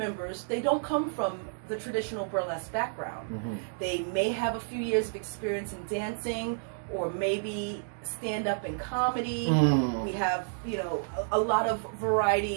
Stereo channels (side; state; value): left; silent; digital silence